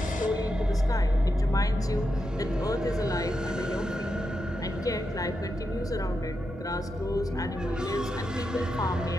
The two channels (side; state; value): both; normal; correlation 0.86